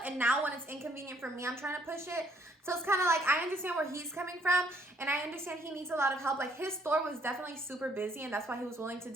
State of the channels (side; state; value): both; normal; correlation 0.67